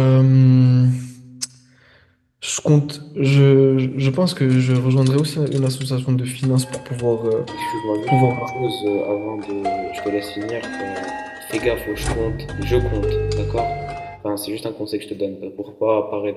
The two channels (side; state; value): both; identical; correlation 1.00